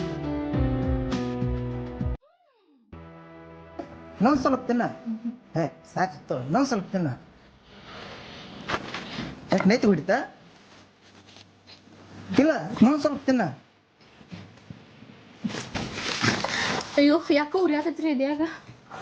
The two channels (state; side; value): identical; both; correlation 1.00